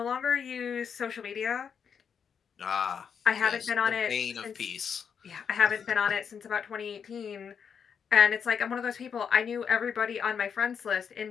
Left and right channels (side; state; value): right; quieter; 7.0 dB